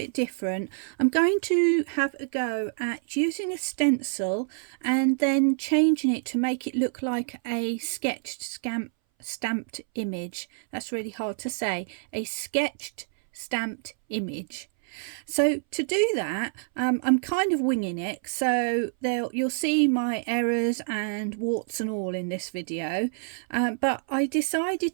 different. I'm going to have a go at using a stencil and then changing it to make it look like a sketched stamped image. That's really hard to say. A sketched stamped image. So to do that, I'm kind of winging it, so you'll see my errors and warts and all in this video, but I decided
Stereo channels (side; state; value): left; silent; 60 dB below the other